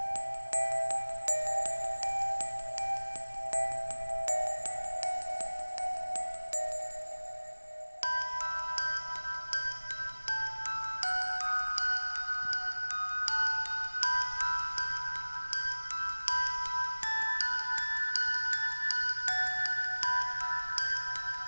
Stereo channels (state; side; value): inverted; both; correlation -1.00